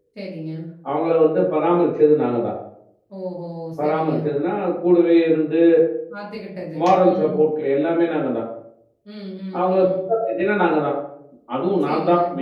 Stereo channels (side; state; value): both; identical; correlation 1.00